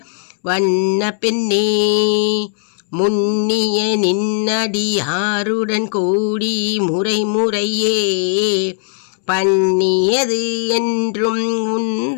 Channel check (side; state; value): right; silent; 68 dB below the other